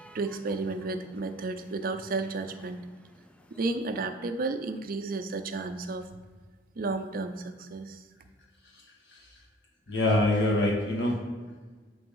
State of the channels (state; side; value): normal; both; correlation 0.48